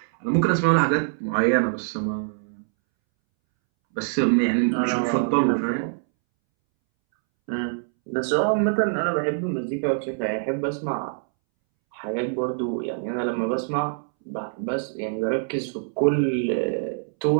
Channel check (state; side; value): silent; left; 62 dB below the other